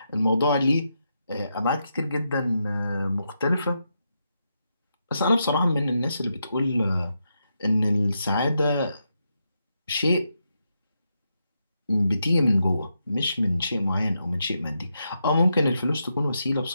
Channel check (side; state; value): both; inverted; correlation -0.84